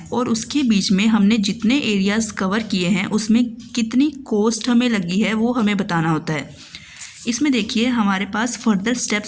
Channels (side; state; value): both; identical; correlation 1.00